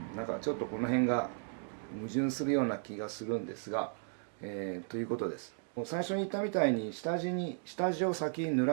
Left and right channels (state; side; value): silent; left; digital silence